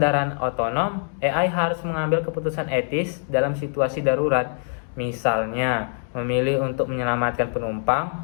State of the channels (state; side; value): silent; right; 60 dB below the other